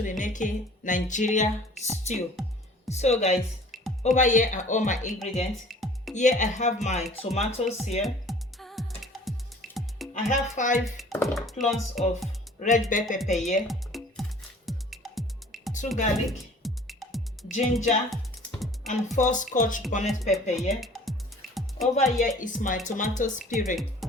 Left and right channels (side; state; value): both; normal; correlation 0.49